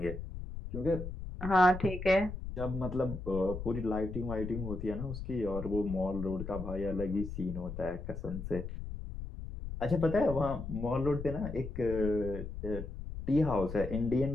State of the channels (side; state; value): left; noise; rumble, 8 dB below the sound